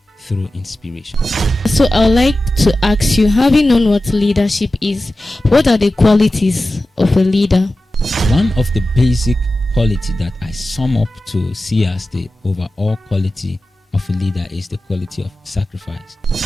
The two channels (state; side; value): normal; both; correlation 0.94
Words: through inspiration. So I would like to ask you, having known what leadership is, what are the qualities of a leader? One of the basic quality that I sum up to see as the overall quality of a leader is the quality of sacrifice.